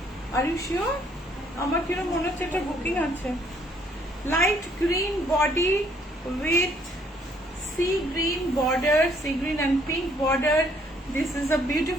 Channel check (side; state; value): both; normal; correlation 0.65